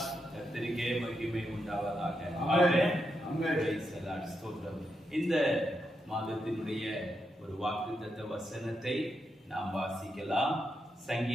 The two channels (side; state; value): both; normal; correlation 0.84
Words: கர்த்தருக்கே மகிமை உண்டாவதாக. ஆமென். ஸ்தோத்திரம். இந்த மாதத்தினுடைய ஒரு வாக்குத்தத்த வசனத்தை நாம் வாசிக்கலாம்.